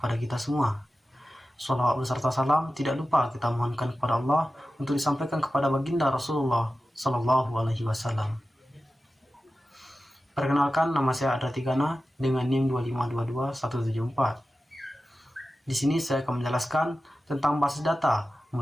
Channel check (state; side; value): normal; both; correlation 0.94